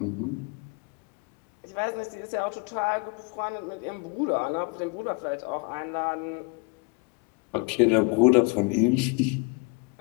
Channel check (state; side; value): quieter; right; 32.0 dB